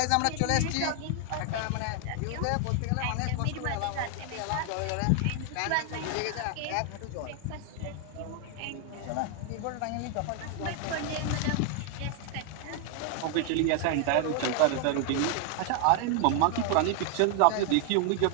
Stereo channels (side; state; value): both; different; correlation 0.00